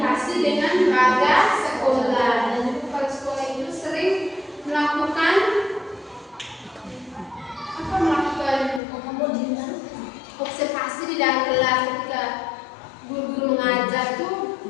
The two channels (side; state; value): right; drops out; at 8.8 s